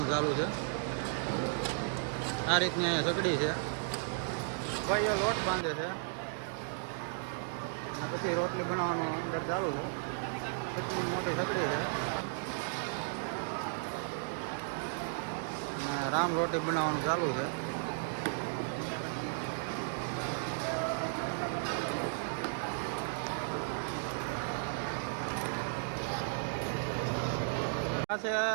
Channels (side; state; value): left; silent; digital silence